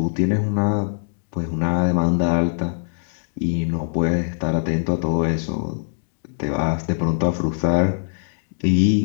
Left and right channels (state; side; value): silent; right; digital silence